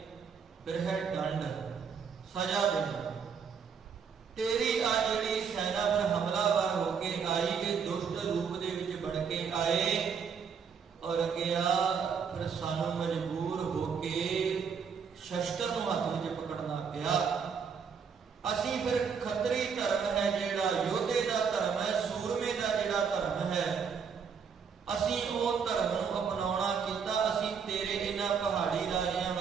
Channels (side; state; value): left; quieter; 6.4 dB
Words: ਫਿਰ ਹੈ ਦੰਡ, ਸਜ਼ਾ ਦੇਣਾ। ਤੇਰੀ ਆ ਜਿਹੜੀ ਸੈਨਾ ਪਰ ਹਮਲਾਵਰ ਹੋ ਕੇ ਆਈ, ਇਹ ਦੁਸ਼ਟ ਰੂਪ ਦੇ ਵਿੱਚ ਬਣ ਕੇ ਆਏ, ਔਰ ਅੱਗਿਆ ਫਿਰ ਸਾਨੂੰ ਮਜਬੂਰ ਹੋ ਕੇ ਸ਼ਸਤਰ ਨੂੰ ਹੱਥ ਵਿੱਚ ਪਕੜਨਾ ਪਿਆ। ਅਸੀਂ ਫਿਰ ਖੱਤਰੀ ਧਰਮ ਹੈ ਜਿਹੜਾ, ਯੋਧੇ ਦਾ ਧਰਮ ਹੈ, ਸੂਰਮੇ ਦਾ ਜਿਹੜਾ ਧਰਮ ਹੈ, ਅਸੀਂ ਉਹ ਧਰਮ ਨੂੰ ਅਪਣਾਉਣਾ ਕੀਤਾ। ਅਸੀਂ ਤੇਰੇ ਇਹਨਾਂ ਪਹਾੜੀ ਰਾਜਿਆਂ